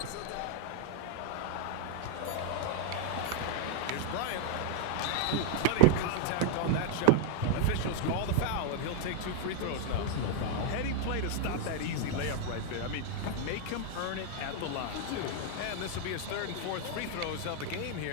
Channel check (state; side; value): different; both; correlation -0.01